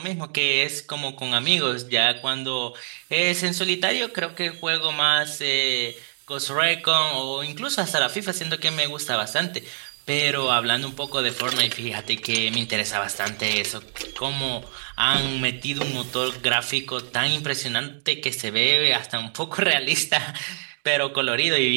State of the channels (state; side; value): silent; left; 60 dB below the other